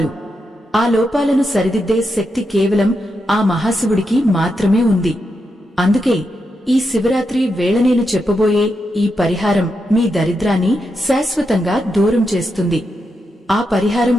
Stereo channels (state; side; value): normal; both; correlation 0.85